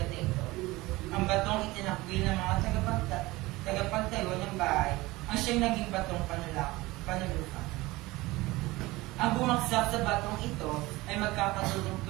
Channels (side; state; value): left; quieter; 20.3 dB